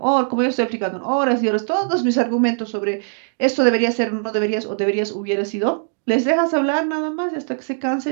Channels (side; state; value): left; silent; digital silence